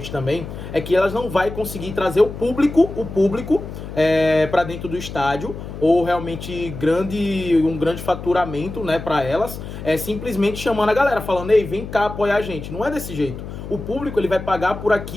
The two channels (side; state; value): left; noise; hum, 10 dB below the sound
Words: também, é que elas não vai conseguir trazer o público para dentro do estádio, ou realmente um grande faturamento, né, para elas, simplesmente chamando a galera, falando, ei, vem cá apoiar a gente. Não é desse jeito. O público, ele vai pagar por